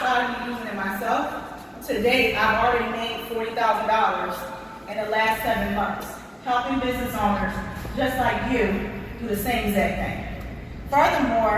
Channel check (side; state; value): both; identical; correlation 1.00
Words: of me using it myself, to date, I've already made $40,000 in the last 7 months, helping business owners just like you do the same exact thing.